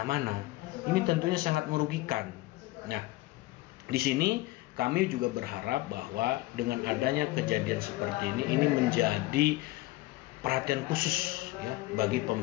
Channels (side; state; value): right; quieter; 19.1 dB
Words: Ini tentunya sangat merugikan. Nah, di sini kami juga berharap bahwa dengan adanya kejadian seperti ini menjadi perhatian khusus ya bagi